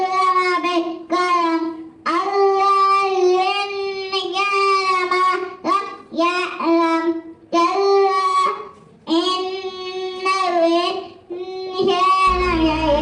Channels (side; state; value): both; identical; correlation 1.00